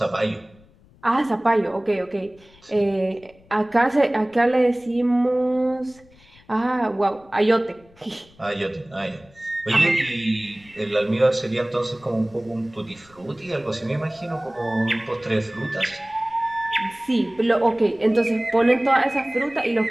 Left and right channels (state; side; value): noise; left; rumble, 28 dB below the sound